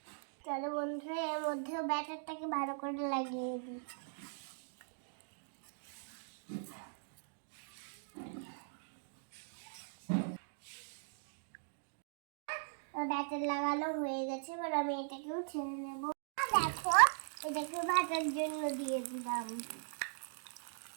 চলো বন্ধুরা, এর মধ্যেও ব্যাটারটাকে ভালো করে লাগিয়ে দিই। ব্যাটার লাগানো হয়ে গেছে, এবার আমি এটাকেও ছেড়ে নেব। দেখো, এটাকে ভাজার জন্য দিয়ে দিলাম।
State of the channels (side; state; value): left; silent; digital silence